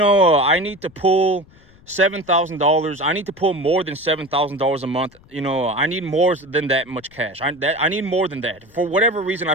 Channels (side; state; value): left; noise; rumble, 27 dB below the sound